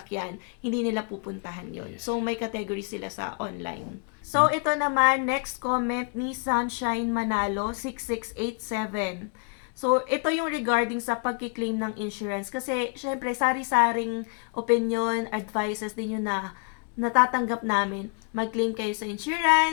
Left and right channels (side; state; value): right; quieter; 37.7 dB